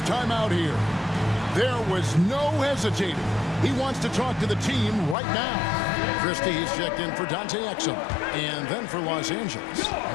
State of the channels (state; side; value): drops out; right; at 5.2 s